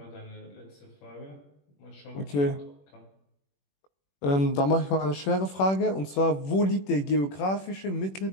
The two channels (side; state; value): right; late; 21 ms